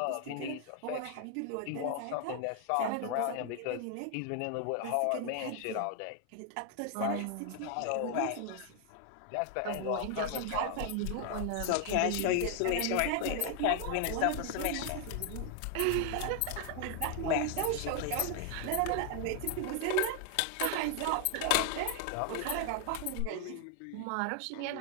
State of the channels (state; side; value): different; both; correlation 0.00